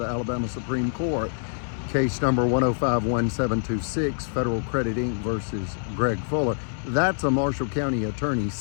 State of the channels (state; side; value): silent; right; 61 dB below the other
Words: Alabama Supreme Court. Case number 1051726, Federal Credit Inc. versus Greg Fuller. That's a Marshall County attorney's